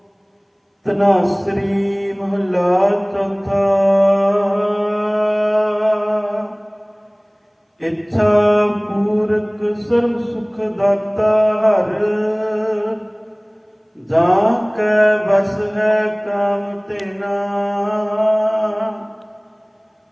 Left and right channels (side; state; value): both; identical; correlation 1.00